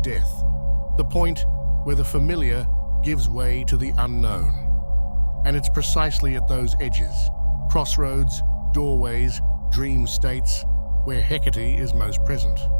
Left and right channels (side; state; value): both; inverted; correlation -1.00